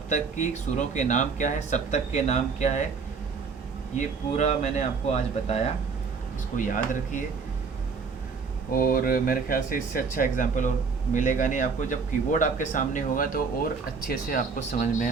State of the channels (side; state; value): left; quieter; 5.2 dB